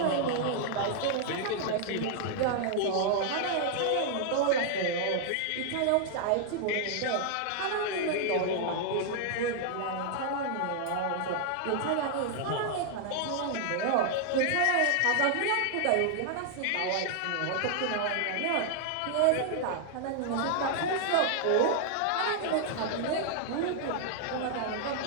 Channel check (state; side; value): different; both; correlation -0.01